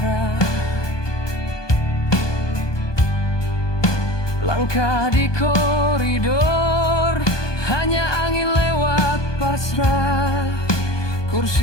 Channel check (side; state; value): right; late; 1.2 ms